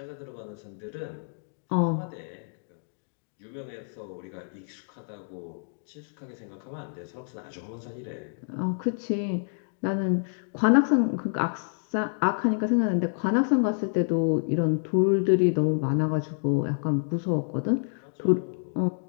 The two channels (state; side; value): silent; right; digital silence